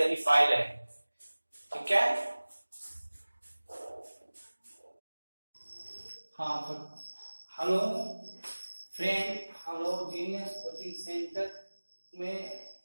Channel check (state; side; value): inverted; both; correlation -1.00